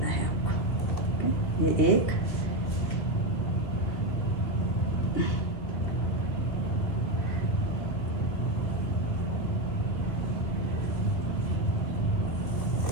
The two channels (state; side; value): late; right; 2.3 ms